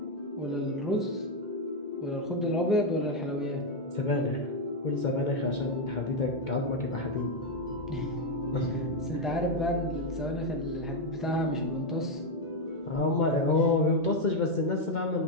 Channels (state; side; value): normal; both; correlation 0.04